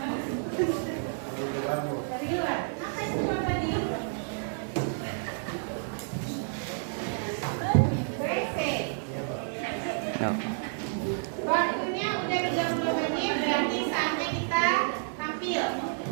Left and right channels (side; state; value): left; silent; digital silence